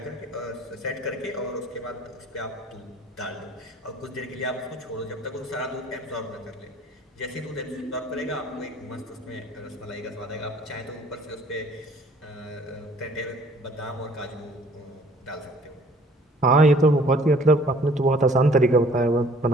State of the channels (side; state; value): both; normal; correlation 0.55